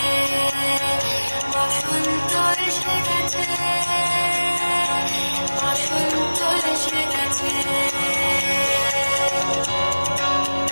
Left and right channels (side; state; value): both; inverted; correlation -1.00